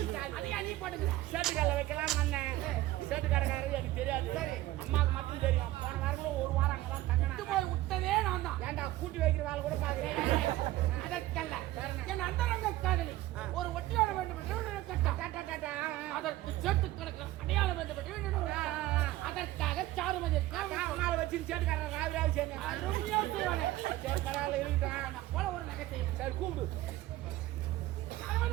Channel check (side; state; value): left; quieter; 16.2 dB